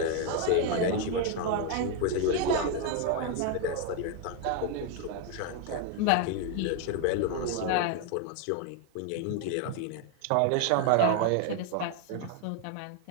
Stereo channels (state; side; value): different; both; correlation 0.01